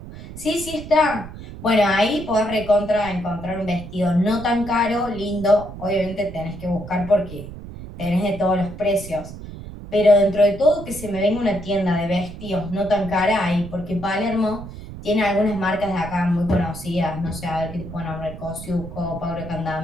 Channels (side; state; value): right; noise; rumble, 13 dB below the sound